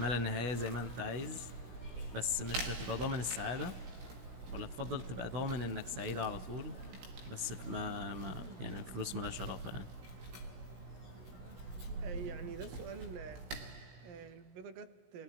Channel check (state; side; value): late; left; 16 ms